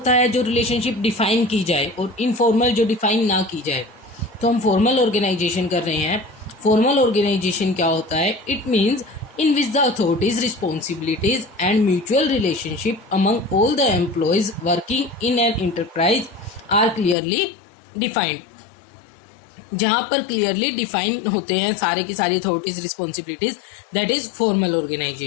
है जो रिलेशनशिप डिफाइन की जाए, और इनफॉर्मल जो डिफाइन ना की जाए। तो हम फॉर्मल ऑर्गेनाइजेशन कर रहे हैं। फॉर्मल ऑर्गेनाइजेशन क्या होता है? It means in which the authorities, responsibilities and mutual relationship among all the employees working in an enterprise are clearly defined। जहाँ पर क्लियरली डिफाइन होते हैं सारे की सारी authorities, responsibilities, that is formal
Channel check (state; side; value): drops out; right; at 17.2 s